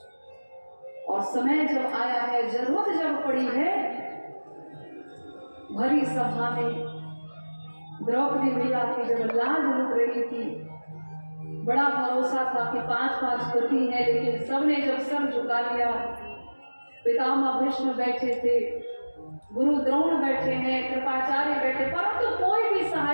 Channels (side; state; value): both; inverted; correlation -1.00